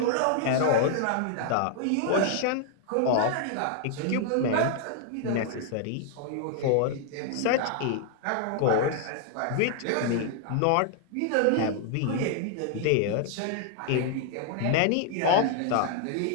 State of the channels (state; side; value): different; both; correlation 0.00